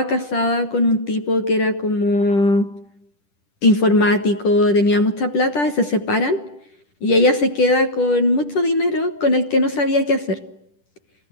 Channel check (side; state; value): right; late; 10 ms